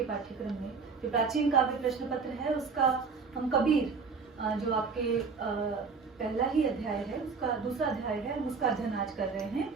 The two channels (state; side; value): quieter; left; 5.0 dB